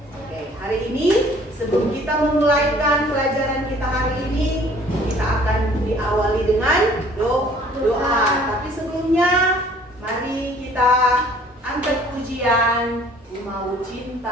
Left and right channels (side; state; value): both; normal; correlation 0.55